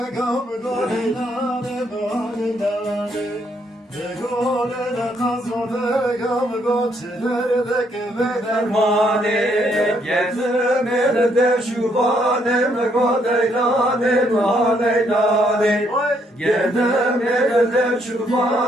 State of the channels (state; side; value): normal; both; correlation 0.72